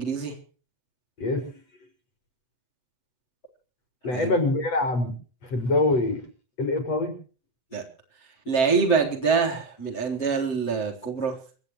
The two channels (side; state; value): right; late; 7.7 ms